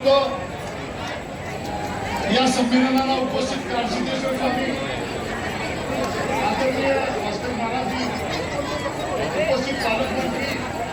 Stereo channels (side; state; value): both; identical; correlation 1.00